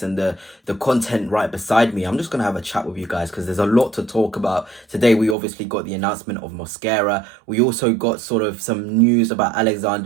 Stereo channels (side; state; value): left; drops out; at 5.4 s